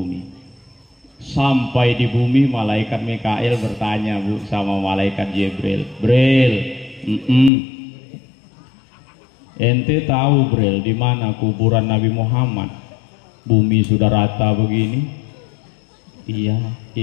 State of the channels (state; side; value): drops out; right; at 7.5 s